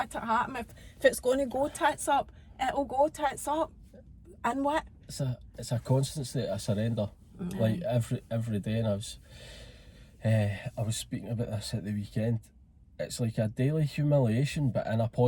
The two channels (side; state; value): both; identical; correlation 1.00